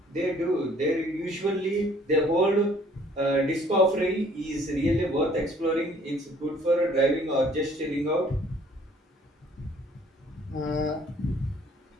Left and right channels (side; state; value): both; normal; correlation 0.59